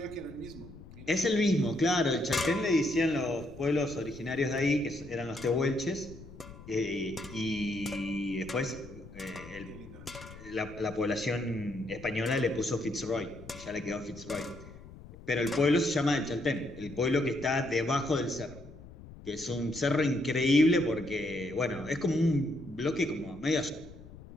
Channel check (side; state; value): left; noise; rumble, 17 dB below the sound